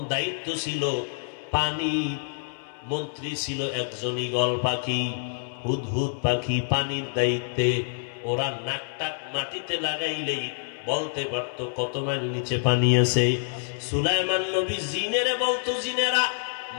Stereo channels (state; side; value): silent; right; 59 dB below the other